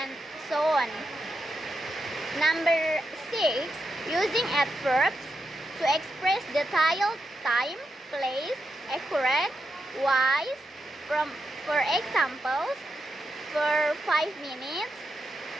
so on. Number 6, using adverbs to express detailed time, place, accurate, wise, for examples, for 5 minutes,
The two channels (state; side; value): normal; both; correlation 0.85